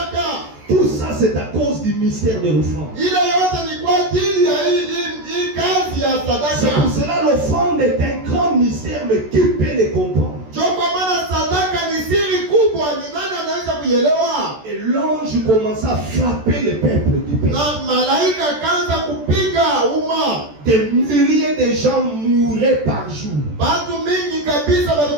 Tout ça, c'est à cause du mystère de l'offrande. Ile yote ni kwa ajili ya hii kazi ya C'est pour sadaka. cela l'offrande est un grand mystère, mais qui peut les comprendre? Ndio kwa maana sadaka ni siri kubwa, ni nani anaweza kuielewa? Et l'ange commença à frapper le peuple du pays. Na malaika kaanza kupiga umma. des milliers de gens mouraient par jour. Batu mingi kabisa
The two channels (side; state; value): left; late; 14 ms